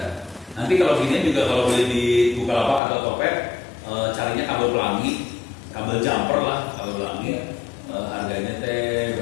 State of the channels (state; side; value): drops out; right; at 2.8 s